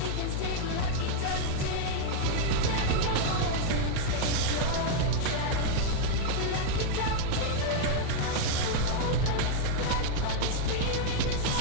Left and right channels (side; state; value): both; different; correlation -0.01